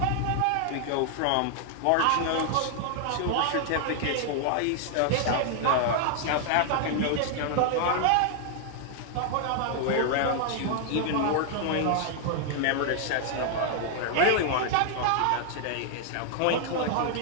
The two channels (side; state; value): both; different; correlation 0.00